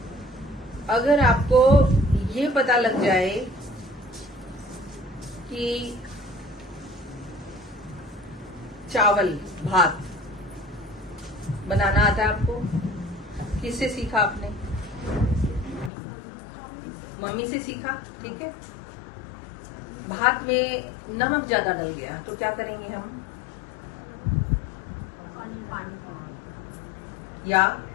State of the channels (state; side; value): drops out; right; at 15.9 s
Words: आपको ये पता लग जाए कि चावल भात बनाना आता है आपको, किससे सीखा आपने? मम्मी से सीखा, ठीक है। भात में नमक ज्यादा डल गया तो क्या करेंगे हम? या